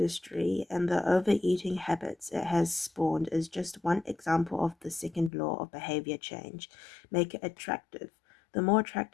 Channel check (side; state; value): right; drops out; at 5.3 s